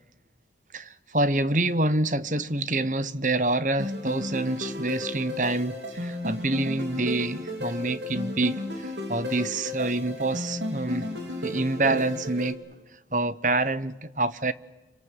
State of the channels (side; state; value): both; normal; correlation 0.36